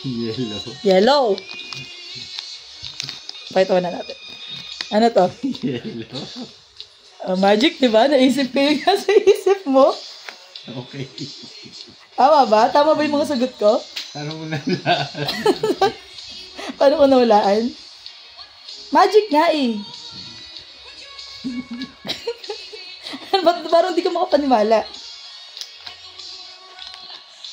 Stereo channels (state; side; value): identical; both; correlation 1.00